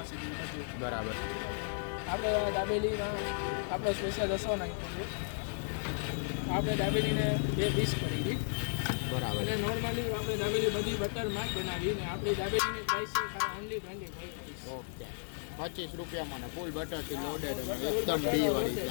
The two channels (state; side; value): silent; right; digital silence